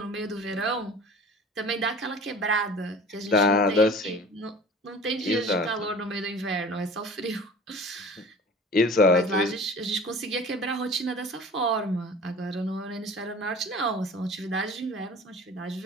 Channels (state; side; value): normal; both; correlation 0.42